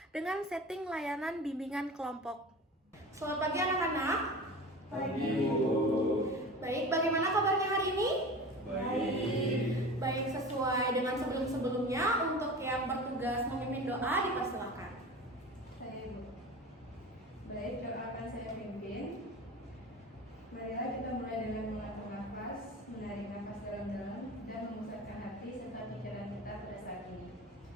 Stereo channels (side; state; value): both; normal; correlation 0.34